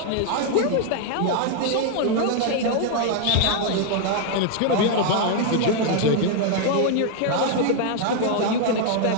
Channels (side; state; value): both; different; correlation 0.00